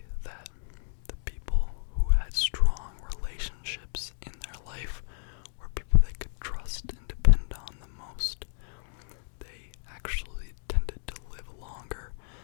that the people who had strong relationships in their life were people they could trust and depend on the most. They actually tended to live longer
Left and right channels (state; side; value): silent; right; digital silence